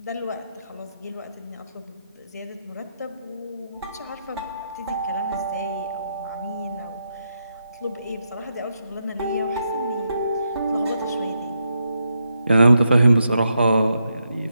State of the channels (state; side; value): inverted; both; correlation -0.82